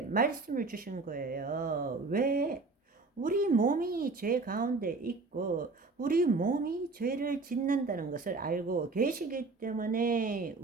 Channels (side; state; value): left; quieter; 3.7 dB